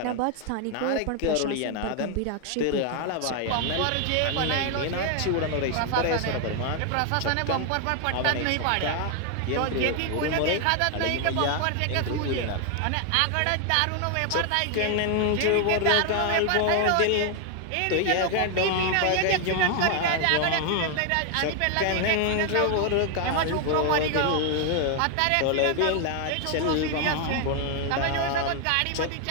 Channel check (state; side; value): different; both; correlation 0.00